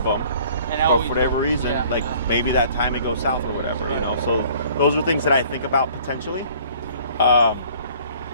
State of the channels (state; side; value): inverted; both; correlation -0.54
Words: them, but for whatever reason, maybe that time it goes south or whatever, So those are things that I think about potentially. But